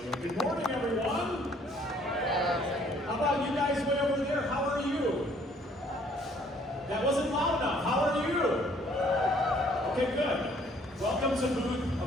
Good morning, everyone. How about you guys way over there? How are you? That wasn't loud enough. How are you? Okay, good. Welcome to booth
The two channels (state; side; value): normal; both; correlation 0.61